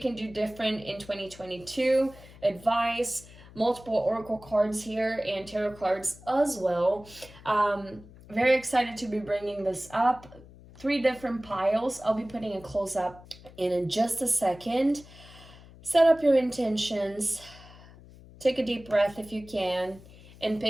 do different in 2022, advice, multiple oracle cards here, and tarot cards as well. Very excited to be bringing this up. 3 different piles. I'll be putting a close up in just a second. Set up your intentions. Take a deep breath if you can and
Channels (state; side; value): noise; left; hum, 21 dB below the sound